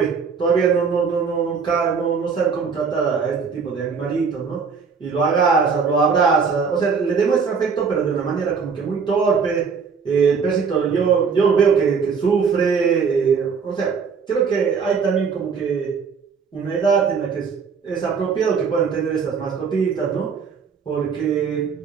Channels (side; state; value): left; quieter; 5.7 dB